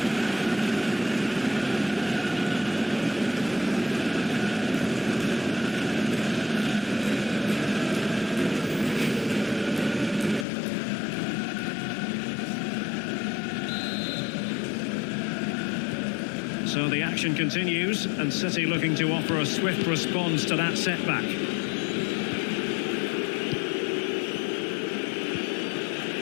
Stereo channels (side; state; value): right; drops out; at 10.5 s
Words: So the action continues, and City looking to offer a swift response to that setback.